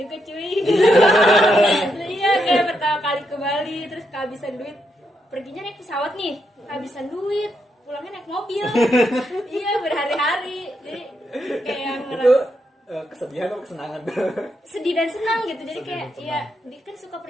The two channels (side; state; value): both; normal; correlation 0.81